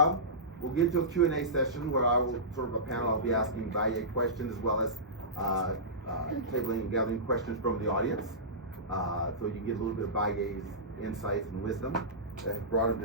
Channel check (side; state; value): both; normal; correlation -0.18